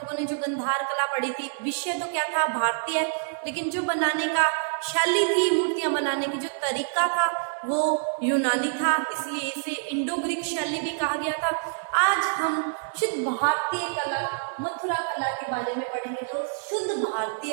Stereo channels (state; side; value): silent; left; digital silence